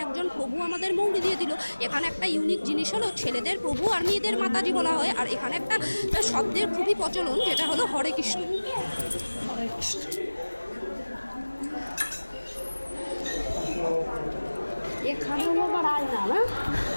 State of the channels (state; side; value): inverted; both; correlation -1.00